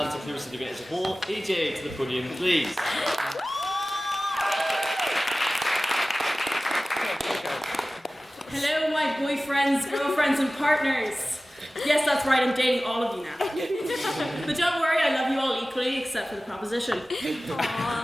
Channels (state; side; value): normal; both; correlation 0.97